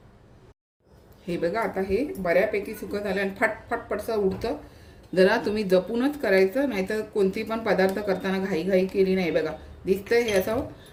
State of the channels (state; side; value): identical; both; correlation 1.00